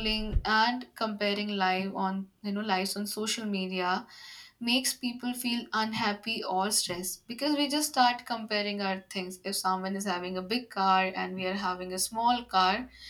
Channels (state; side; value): identical; both; correlation 1.00